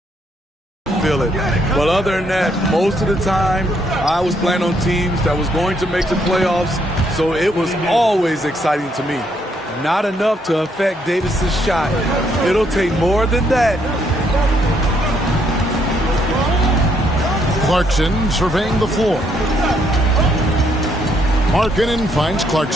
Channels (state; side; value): normal; both; correlation 0.72